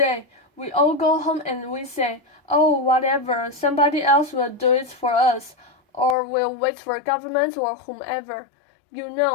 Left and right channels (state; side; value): drops out; right; at 6.2 s